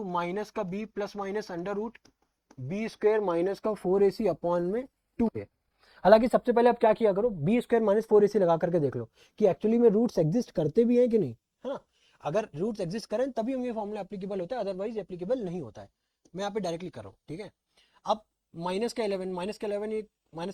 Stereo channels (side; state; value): both; identical; correlation 1.00